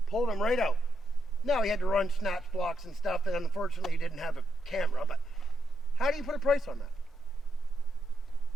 Pulled him right out. Now he had to run snatch blocks and stuff, and unfortunately he didn't have a camera, but how do you put a price on that?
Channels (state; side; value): normal; both; correlation 0.81